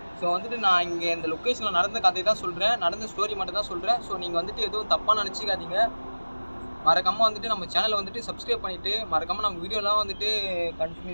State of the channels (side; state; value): both; inverted; correlation -1.00